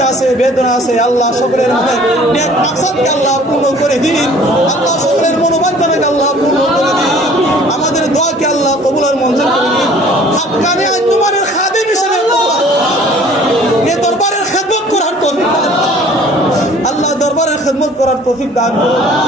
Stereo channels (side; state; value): both; normal; correlation 0.52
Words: আছে, বেদনা আছে, আল্লাহ সকলের মনে নেক মাকসাদকে আল্লাহ পূর্ণ করে দিন। আল্লাহ সকলের মনোবাঞ্ছনাকে আল্লাহ পূর্ণ করে দিন। আমাদের দোয়াকে আল্লাহ কবুল আর মঞ্জুর করে দিন। হাক্কানি আঞ্জুমানের খাদিম হিসেবে এই দরবারের খেদমত করার তৌফিক দান আল্লাহ, দরবারের খেদমত করার তৌফিক দান করুন।